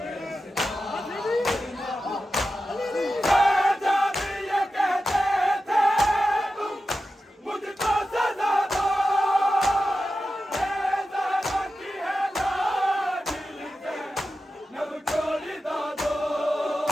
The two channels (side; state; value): both; normal; correlation 0.92